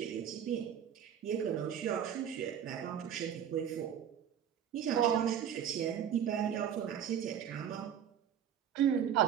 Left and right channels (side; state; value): left; quieter; 9.1 dB